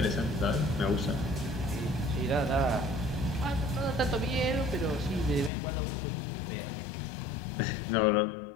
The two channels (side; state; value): right; drops out; at 5.5 s